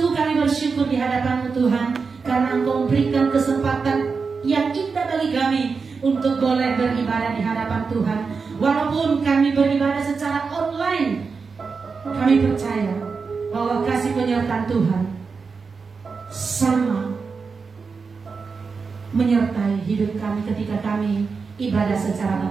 kami bersyukur di hadapan-Mu Tuhan, karena Engkau memberikan kesempatan yang indah bagi kami untuk boleh beribadah di hadapan Tuhan. Walaupun kami beribadah secara online, kami percaya bahwa kasih penyertaan Tuhan sama menyertai hidup kami ketika kami ibadah secara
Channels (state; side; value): quieter; left; 5.0 dB